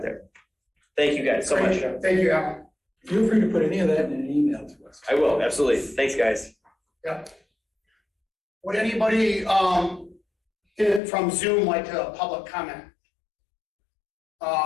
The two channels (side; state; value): right; drops out; at 11.0 s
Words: there. Thank you guys so much. Thank you, Alan. Feel free to put any of that in an email to us. I will, absolutely. Thanks, guys. Yeah. Would anybody from Zoom like to public comment?